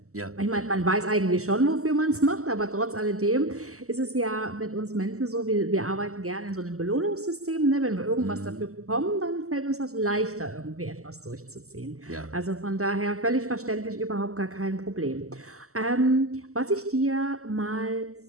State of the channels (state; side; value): late; left; 0.64 ms